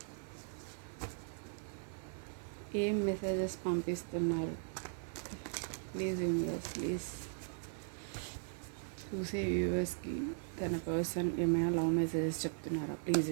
ఏం మెసేజెస్ పంపిస్తున్నారు. ప్లీజ్ యూనివర్స్, ప్లీజ్ చూసే వ్యూవర్స్కి తన పర్సన్ ఏమైనా లవ్ మెసేజెస్ చెప్తున్నారా. ప్లీజ్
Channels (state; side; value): silent; left; digital silence